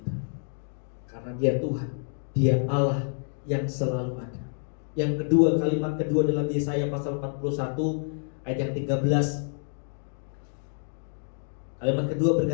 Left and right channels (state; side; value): silent; right; digital silence